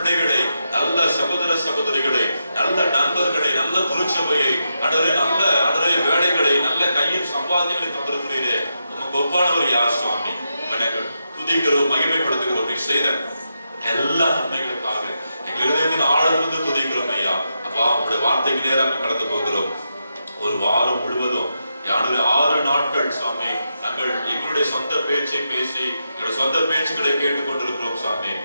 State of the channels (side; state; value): both; inverted; correlation -0.85